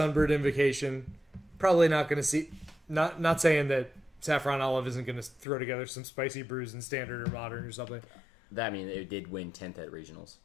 Invocation probably not going to see. Not saying that Saffron Olive isn't going to throw together some spicy brews in Standard or Modern or something. It did win 10th at regionals.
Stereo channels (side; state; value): right; drops out; at 5.5 s